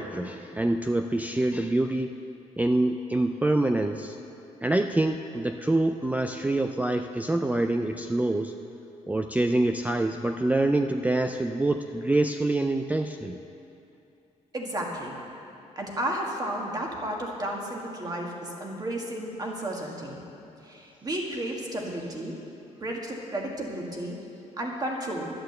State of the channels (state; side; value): normal; both; correlation 0.87